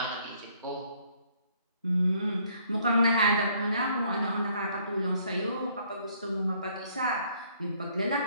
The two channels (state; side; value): inverted; both; correlation -0.65